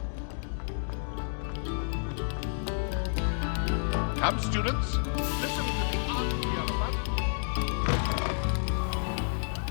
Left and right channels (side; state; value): right; silent; digital silence